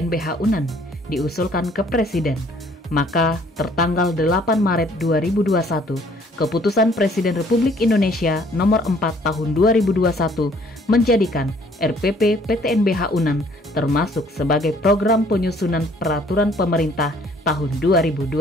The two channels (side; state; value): both; normal; correlation 0.60